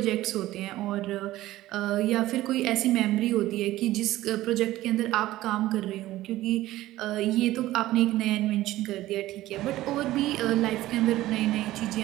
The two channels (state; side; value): quieter; left; 15.8 dB